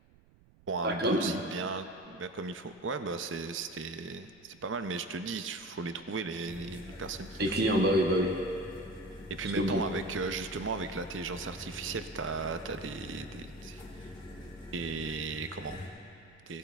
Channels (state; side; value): noise; right; rumble, 27 dB below the sound